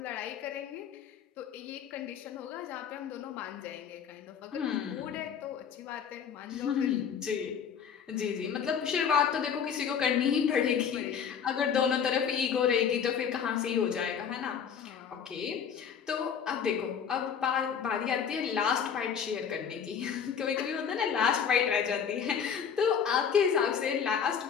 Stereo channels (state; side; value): quieter; right; 7.4 dB